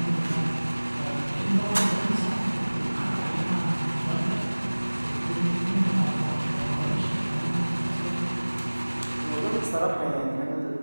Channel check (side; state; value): both; inverted; correlation -1.00